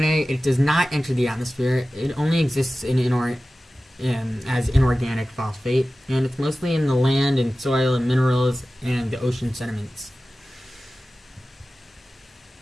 It does not enter the atmosphere. It only exists as inorganic phosphate, and it's mostly in the land and soil and minerals and the ocean sediments.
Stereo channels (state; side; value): normal; both; correlation 0.95